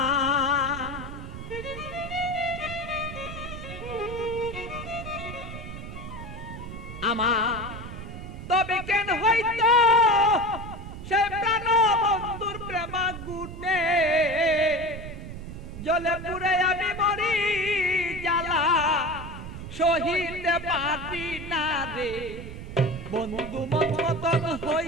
আমার তবে কেন হইতো সে প্রাণ বন্ধুর প্রেমা গুণে জলে পুরে আমি মরি জ্বালা সহিতে পারি না রে বন্ধু মন মতন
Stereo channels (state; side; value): noise; right; rumble, 10 dB below the sound